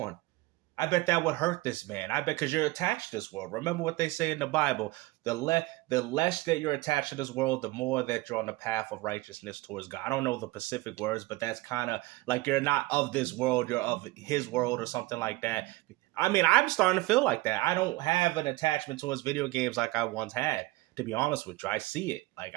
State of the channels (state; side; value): quieter; left; 20.6 dB